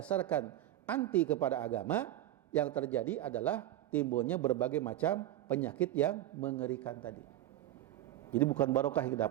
anti kepada agama, yang terjadi adalah timbulnya berbagai macam penyakit yang mengerikan tadi. Jadi bukan barokah yang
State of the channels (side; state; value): left; quieter; 13.5 dB